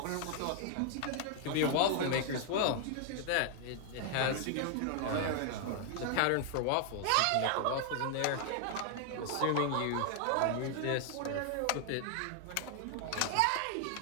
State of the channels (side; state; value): both; different; correlation 0.00